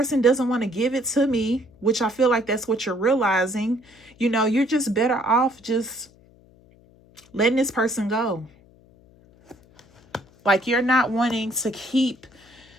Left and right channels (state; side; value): noise; left; hum, 28 dB below the sound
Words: doesn't want to give it to me, which I feel like that's what you're realizing, you're just better off just letting this person go. Like, you're not wanting to keep